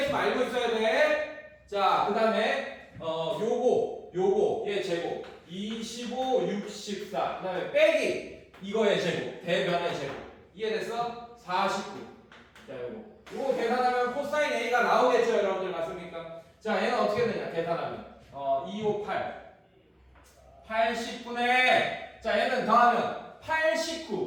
알고 있어야 돼. 자, 그 다음에 요거 얘 제곱 25 64. 그 다음에 빼기 이거의 제곱, 대변의 제곱. 이해됐어? 49. 자, 요거 계산하면 코사인 A가 나오겠죠, 여러분들. 맞습니까? 자, 얘는 어떻게 되냐? 계산하면 258 80분의, 자, 얘는 더하면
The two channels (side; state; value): both; identical; correlation 1.00